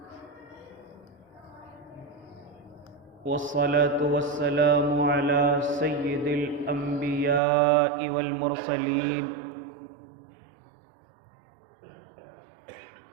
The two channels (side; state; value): left; drops out; at 7.4 s